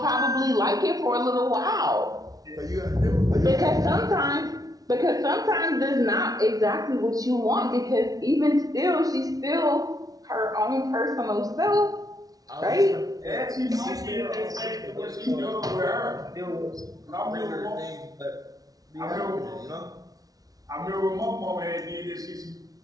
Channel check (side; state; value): left; late; 0.18 ms